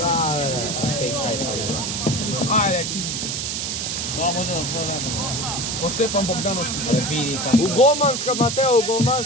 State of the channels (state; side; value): noise; right; hiss, 2 dB below the sound